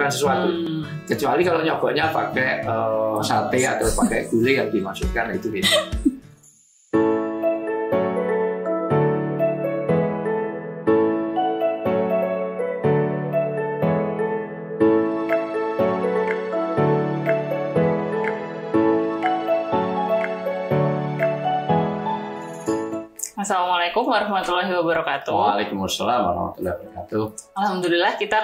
sesuatu. Kecuali kalau nyogoknya pakai sate atau pakai gulai yang dimasukkan itu beda. Assalamualaikum warahmatullahi wabarakatuh. Waalaikumsalam warahmatullahi wabarakatuh. Alhamdulillah kita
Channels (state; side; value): identical; both; correlation 1.00